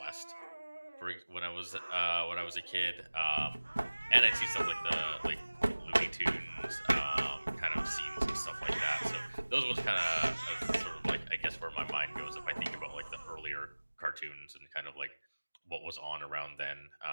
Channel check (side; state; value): both; inverted; correlation -1.00